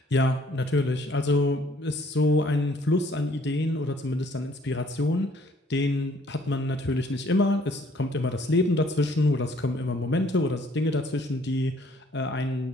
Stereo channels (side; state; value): both; normal; correlation 0.61